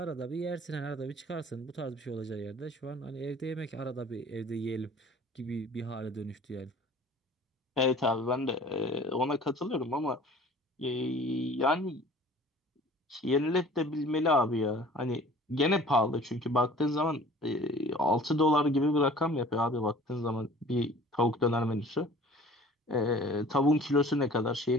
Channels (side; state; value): both; normal; correlation 0.48